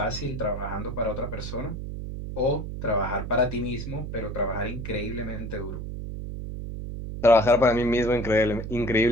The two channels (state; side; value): noise; right; hum, 7 dB below the sound